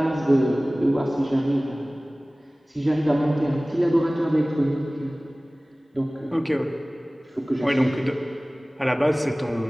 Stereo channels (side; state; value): both; normal; correlation 0.98